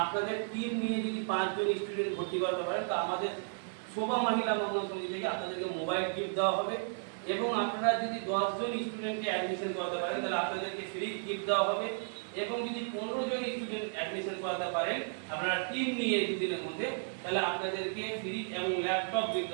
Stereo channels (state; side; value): silent; left; digital silence